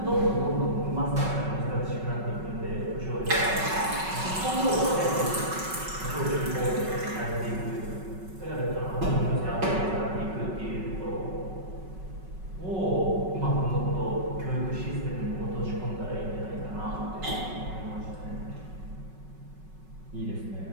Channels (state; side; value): late; left; 5.3 ms